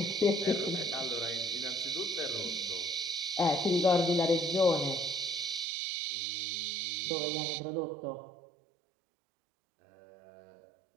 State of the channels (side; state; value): left; drops out; at 5.7 s